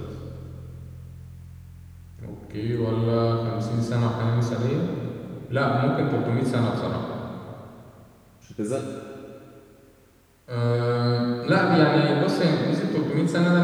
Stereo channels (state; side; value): identical; both; correlation 1.00